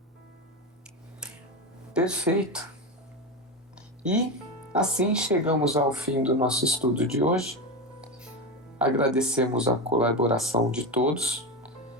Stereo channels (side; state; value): both; normal; correlation 0.18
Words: Perfeito. E assim chegamos ao fim do nosso estudo de hoje. Agradecemos a colaboração de todos